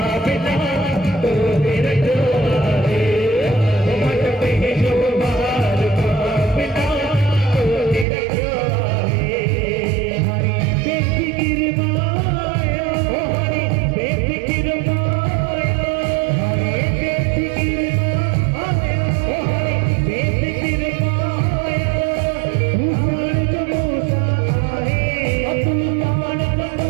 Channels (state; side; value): drops out; left; at 8.1 s